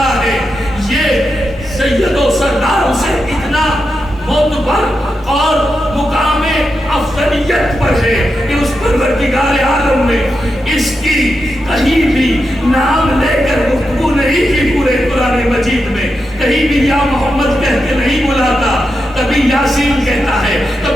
ہے، یہ سید و سردار اسے اتنا معتبر اور مقام افضلیت پر ہے کہ اس پروردگار عالم نے اس کی کہیں بھی نام لے کر گفتگو نہیں کی۔ پورے قرآن مجید میں کہیں بھی یا محمد کہہ کے نہیں بلاتا، کبھی یاسین کہتا ہے،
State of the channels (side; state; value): both; normal; correlation 0.87